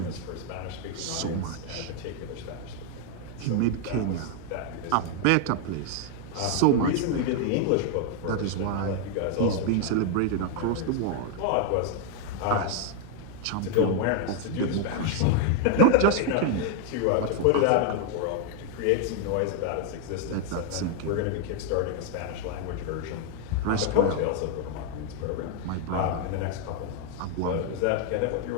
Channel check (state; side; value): different; both; correlation 0.00